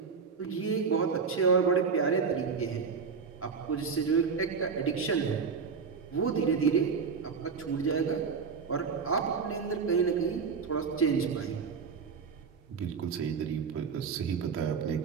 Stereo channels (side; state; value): left; quieter; 5.7 dB